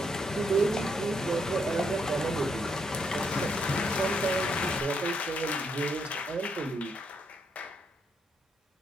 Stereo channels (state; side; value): normal; both; correlation 0.76